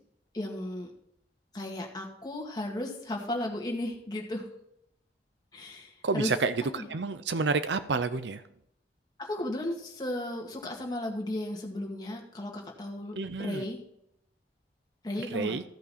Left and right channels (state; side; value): normal; both; correlation 0.39